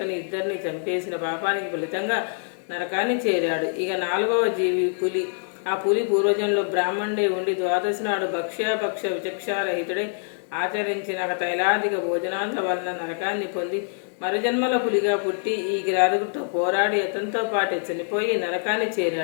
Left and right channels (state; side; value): silent; right; 62 dB below the other